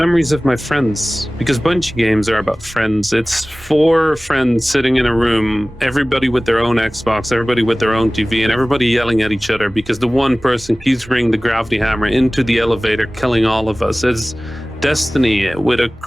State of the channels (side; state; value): both; normal; correlation 0.98